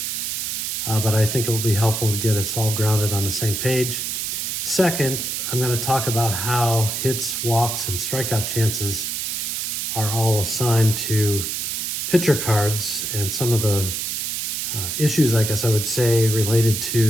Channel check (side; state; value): right; noise; hiss, 2 dB below the sound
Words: but I think it will be helpful to get us all grounded on the same page. Second, I'm going to talk about how hits, walks, and strikeout chances are all assigned to pitcher cards and some of the issues, I guess I would say, related